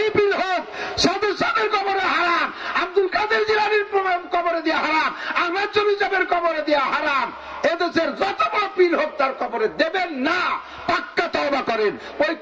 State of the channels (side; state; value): both; identical; correlation 1.00